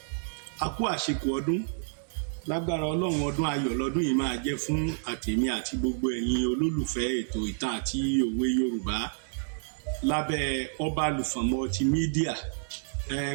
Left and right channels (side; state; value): left; silent; digital silence